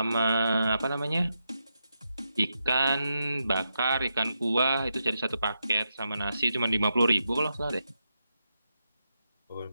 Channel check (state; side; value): inverted; both; correlation -0.86